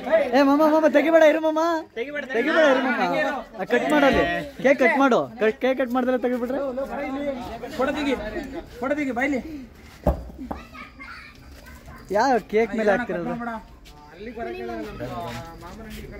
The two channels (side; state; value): both; identical; correlation 1.00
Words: ಏ ಮಮ್ಮ ತೆಗಿಬೇಡ ಇರು ಮಮ್ಮ ಕಟ್ ಮಾಡಲ್ಲಿ ಕೇಕ್ ಕಟ್ ಮಾಡು ಕೇಕ್ ಕಟ್ ಮಾಡಿದ್ರೆ ತೆಗಿಬಿಟ್ರೆ ಕೊಡದಿಗಿ ಬೈಲಿ ಯಾವ ಕೇಕ್ ಮೇಲೆ ಹಾಕ್ತಿರೋದು